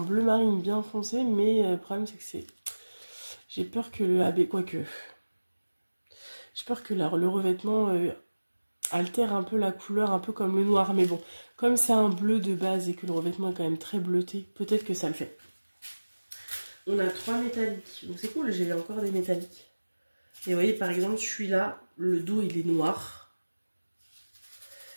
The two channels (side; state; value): both; inverted; correlation -1.00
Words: marine bien foncé. Mais le problème, c'est que c'est... J'ai peur que le AB, quoique... J'ai peur que le revêtement altère un peu la couleur, un peu comme le noir. Mais bon, comme c'est un bleu de base et que le revêtement est quand même très bleuté, peut-être que ça le fait. On a 3 métalliques. Donc c'est cool, j'ai encore des métalliques. Et vous voyez, par exemple, celui-là, le dos, il est noir.